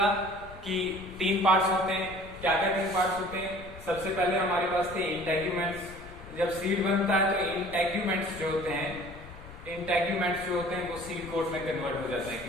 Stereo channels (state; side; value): noise; left; rumble, 16 dB below the sound